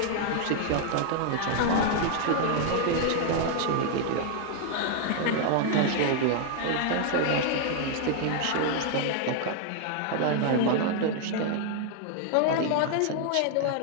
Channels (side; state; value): both; different; correlation 0.00